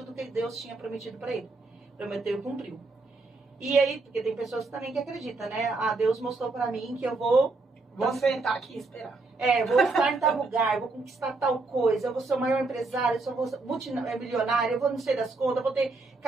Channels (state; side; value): quieter; left; 3.6 dB